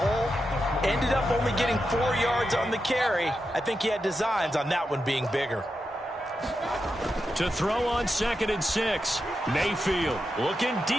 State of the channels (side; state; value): both; normal; correlation 0.88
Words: Ended up only getting 4 yards on the carry. I think he had designs on that one being bigger. To throw on 2nd and 6. Mayfield looking